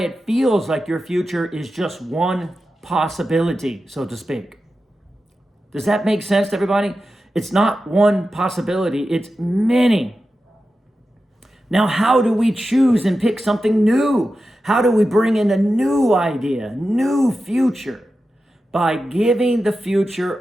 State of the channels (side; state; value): both; normal; correlation 0.92